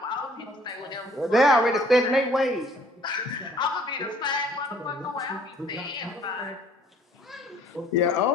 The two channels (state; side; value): normal; both; correlation 0.58